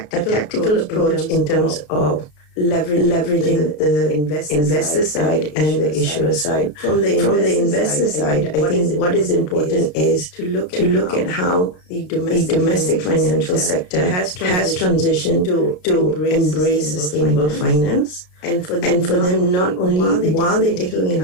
approach in terms of leveraging the investor side and the issuer side. From the investor side, I think what is important is to look at how the domestic financial sector has transitioned to embrace sustainable finance. And for them, not only while they're taking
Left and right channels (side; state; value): right; late; 33 ms